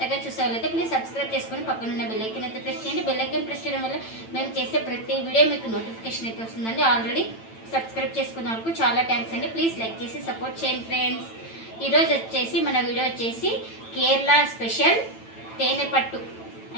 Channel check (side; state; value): right; late; 9.0 ms